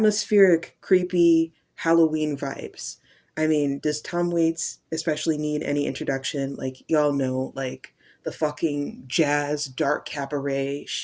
creepy Halloween vibes. I mean, does Tom Waits especially need any introduction? Like, y'all know, like the fucking jazz, dark cabaret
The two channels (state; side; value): identical; both; correlation 1.00